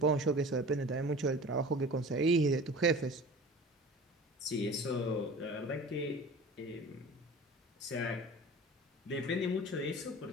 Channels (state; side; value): normal; both; correlation 0.39